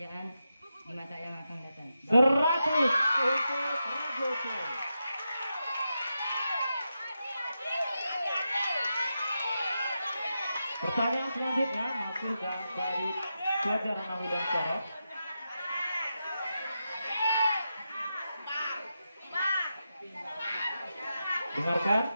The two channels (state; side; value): inverted; both; correlation -0.88